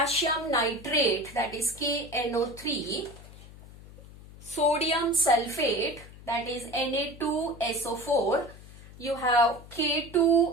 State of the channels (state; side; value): noise; left; hum, 18 dB below the sound